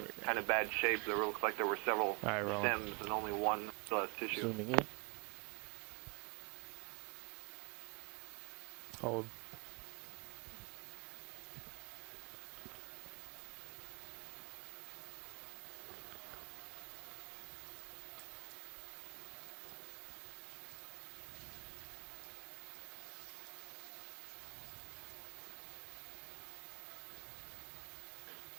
kind of bad shape. There looks like there were several stems and only one still has tissue. Zooming in. Hold.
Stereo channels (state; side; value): quieter; left; 32.6 dB